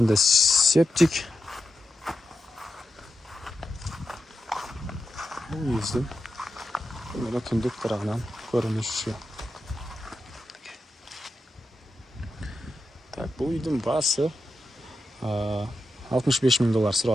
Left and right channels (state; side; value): normal; both; correlation 0.88